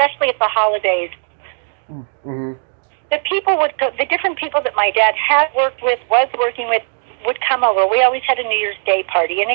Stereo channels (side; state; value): left; silent; digital silence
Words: at the holidays, mm-hmm. The different people that my dad had worked with, was working with, would come over. We always had a New Year's Day party, and